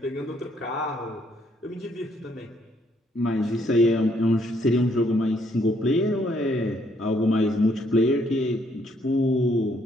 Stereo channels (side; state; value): both; normal; correlation 0.70